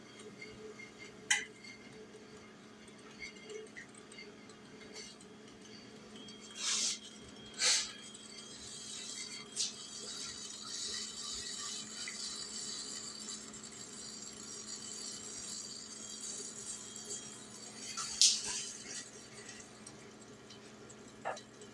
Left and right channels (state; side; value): identical; both; correlation 1.00